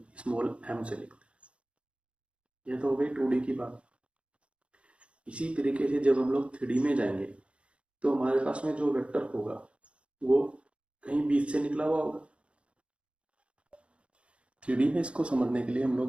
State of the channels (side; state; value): left; late; 0.059 ms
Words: स्मॉल एम से लिखते हैं। यह तो हो गई 2D की बात। इसी तरीके से जब हम लोग 3D में जाएंगे तो हमारे पास में जो वेक्टर होगा वो कहीं बीच से निकला हुआ होगा। 3D में इसको समझने के लिए हम